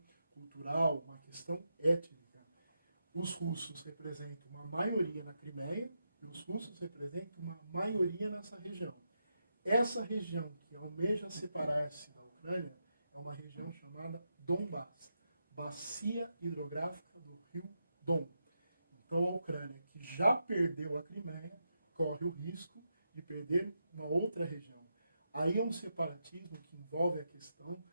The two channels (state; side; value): inverted; both; correlation -0.85